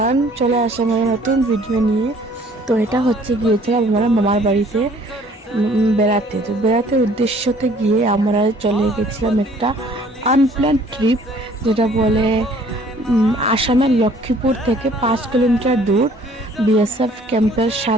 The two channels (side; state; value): both; normal; correlation 0.56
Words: চলে আসলাম একটা নতুন ভিডিও নিয়ে। তো এটা হচ্ছে গিয়েছিলাম আমরা মামার বাড়িতে বেড়াতে। তো বেড়াতে উদ্দেশ্যতে গিয়ে আমরা চলে গেছিলাম একটা আনপ্ল্যান ট্রিপ, যেটা বলে আসামের লক্ষ্মীপুর থেকে 5 কিলোমিটার দূর বিএসএফ ক্যাম্পের